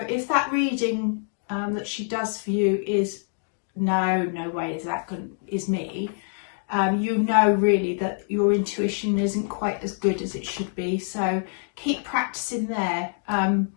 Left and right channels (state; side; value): silent; right; 61 dB below the other